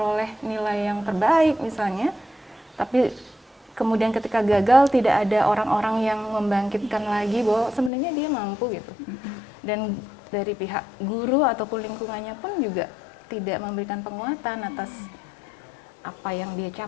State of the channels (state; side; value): drops out; right; at 7.9 s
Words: nilai yang terbaik misalnya, tapi kemudian ketika gagal tidak ada orang-orang yang membangkitkan lagi bahwa sebenarnya dia mampu gitu. Dan dari pihak guru ataupun lingkungannya pun juga tidak memberikan penguatan atas apa yang dia